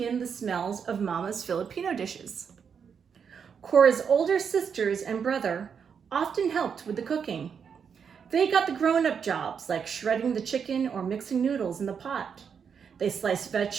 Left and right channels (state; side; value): quieter; left; 6.8 dB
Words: the smells of Mama's Filipino dishes. Cora's older sisters and brother often helped with the cooking. They got the grown-up jobs like shredding the chicken or mixing noodles in the pot. They sliced